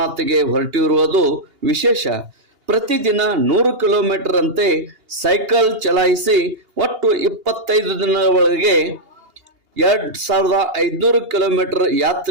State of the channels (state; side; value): late; left; 2.8 ms